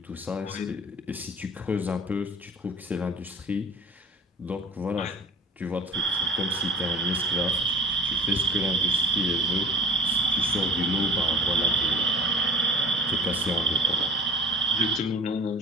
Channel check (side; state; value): both; normal; correlation 0.44